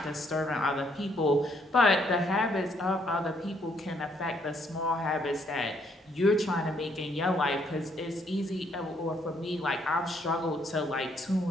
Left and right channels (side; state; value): both; normal; correlation 0.70